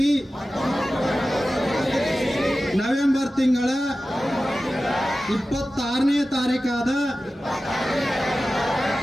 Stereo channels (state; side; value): normal; both; correlation 0.95